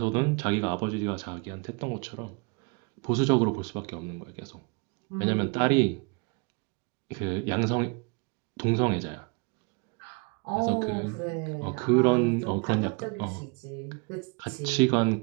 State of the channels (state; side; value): quieter; left; 32.1 dB